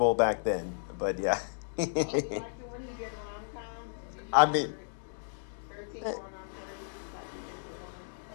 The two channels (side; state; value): right; silent; digital silence